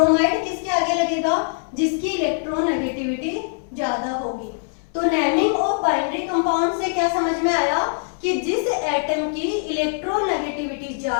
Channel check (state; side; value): silent; right; 64 dB below the other